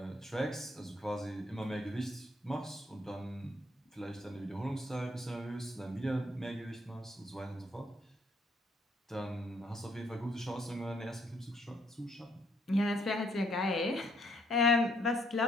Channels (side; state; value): both; normal; correlation 0.68